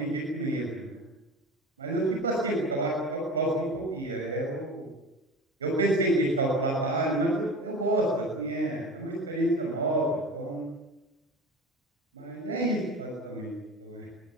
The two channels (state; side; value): normal; both; correlation 0.34